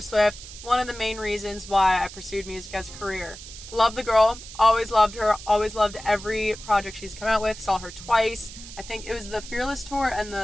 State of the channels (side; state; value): right; noise; hiss, 14 dB below the sound